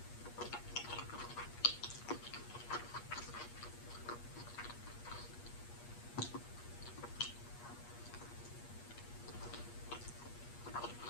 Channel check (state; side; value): late; right; 8.4 ms